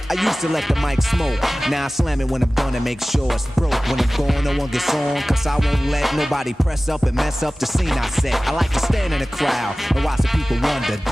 I used to let the mic smoke. Now I slam it when I'm done and make sure it's broke. When I'm gone, no one gets on, cause I won't let nobody press up and mess up the scene I set. I like to stand in the crowd and watch the people wonder.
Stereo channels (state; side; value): normal; both; correlation 0.97